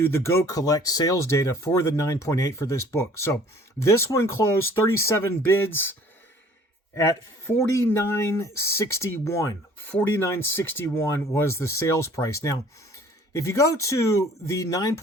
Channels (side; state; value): both; normal; correlation 0.53